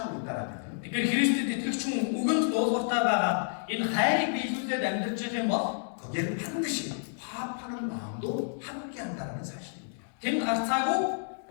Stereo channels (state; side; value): silent; right; digital silence